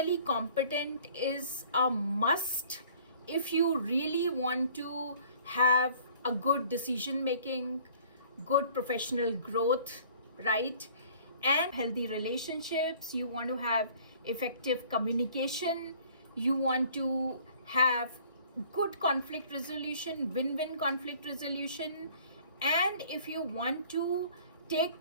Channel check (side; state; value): both; inverted; correlation -0.53